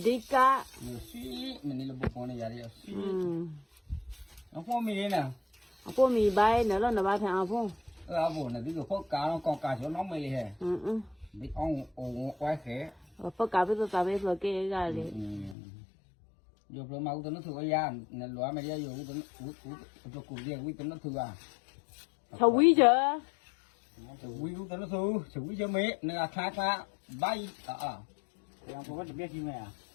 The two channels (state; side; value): drops out; right; at 15.6 s